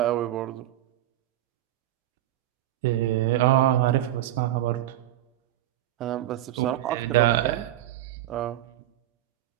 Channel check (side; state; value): left; quieter; 13.7 dB